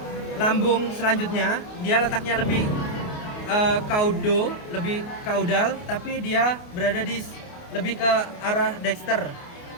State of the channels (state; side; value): late; right; 28 ms